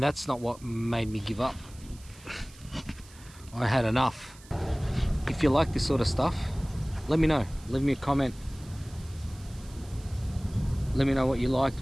not what made me give up. I had enough. If you like this sort of stuff, let me know. Leave me a comment. Let me know what you liked,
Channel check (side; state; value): right; noise; hiss, 22 dB below the sound